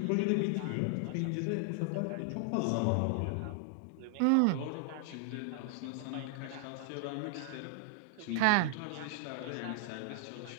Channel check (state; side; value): different; both; correlation 0.00